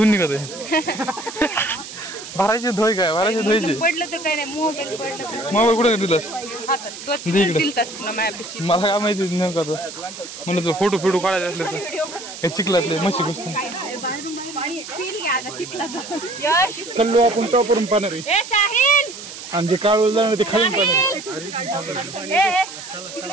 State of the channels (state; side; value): noise; right; hiss, 12 dB below the sound